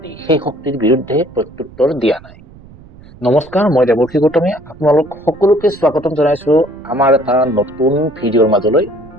সেই শক্তিৰ বিৰুদ্ধে প্ৰত্যুত্তৰ দিয়া নাই। নমস্কাৰ, মই দেৱৰ্ষি গৌতমে আপোনালোক সকলোকে স্বাগতম জনাইছো আমাৰ এটা নতুন ভিডিঅ'ৰ মাজলৈ।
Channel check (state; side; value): noise; right; rumble, 22 dB below the sound